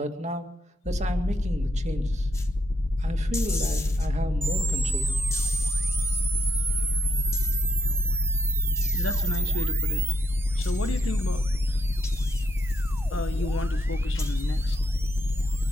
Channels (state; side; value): normal; both; correlation 0.78